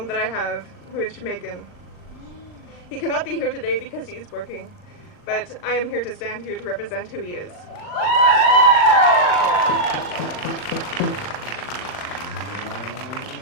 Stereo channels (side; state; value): right; late; 39 ms